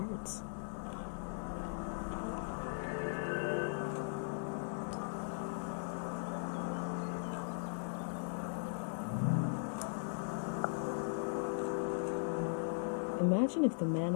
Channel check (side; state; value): right; silent; 52 dB below the other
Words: Imagine if the man